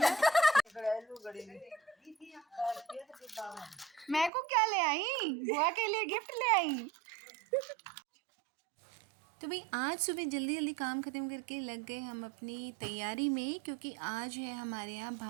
मैं को क्या ले आई? बुआ के लिए गिफ्ट ले आई। तो भाई आज सुबह जल्दी जल्दी काम ख़त्म करके लग गए हम अपनी तैयारी में, क्योंकि आज है हमारे यहाँ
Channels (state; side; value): drops out; left; at 4.3 s